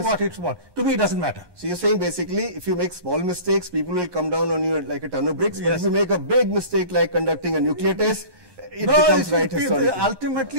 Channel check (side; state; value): left; late; 11 ms